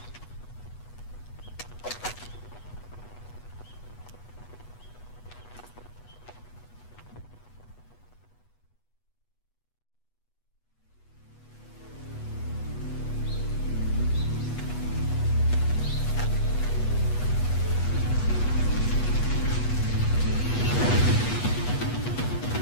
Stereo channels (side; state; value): right; late; 8.2 ms